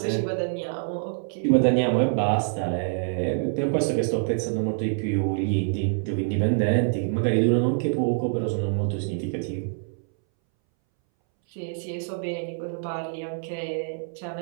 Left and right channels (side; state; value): left; silent; 61 dB below the other